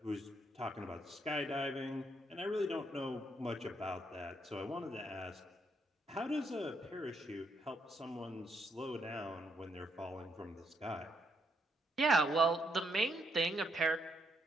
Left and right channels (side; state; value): both; normal; correlation 0.76